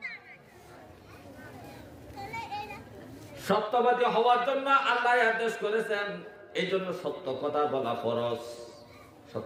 সত্যবাদী হওয়ার জন্য আল্লাহ আদেশ করেছেন, এই জন্য সত্য কথা বলা ফরজ।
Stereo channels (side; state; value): both; identical; correlation 1.00